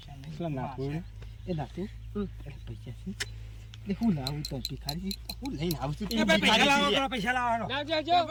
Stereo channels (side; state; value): both; identical; correlation 1.00